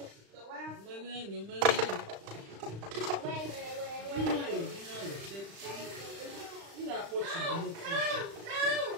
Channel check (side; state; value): left; late; 35 ms